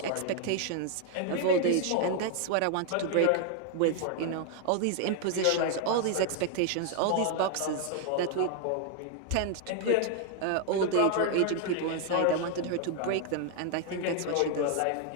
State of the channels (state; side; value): different; both; correlation 0.00